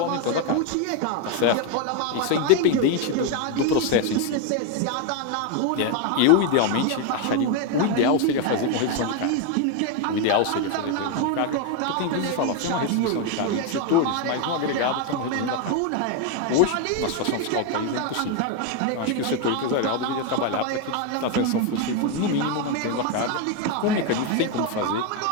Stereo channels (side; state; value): both; different; correlation 0.01